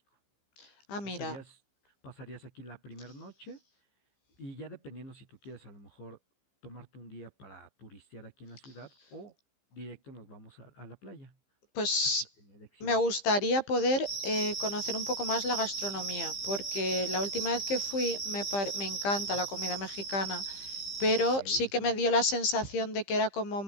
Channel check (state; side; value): late; right; 15 ms